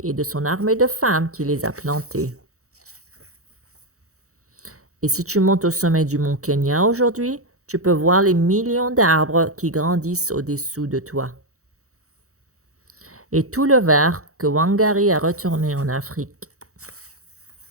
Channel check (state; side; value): late; left; 0.65 ms